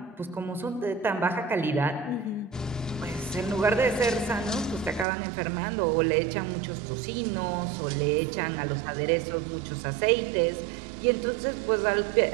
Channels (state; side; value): drops out; left; at 5.1 s